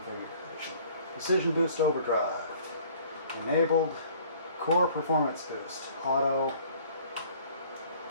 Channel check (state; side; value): inverted; both; correlation -0.53